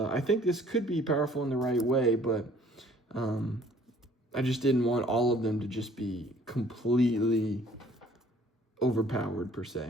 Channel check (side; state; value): both; normal; correlation 0.56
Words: think this could be powerful in the right way, but I just didn't want all of them to just be completely overpowered per